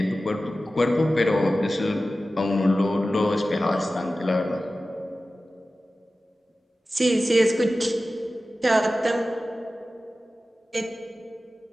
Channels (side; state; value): both; normal; correlation 0.95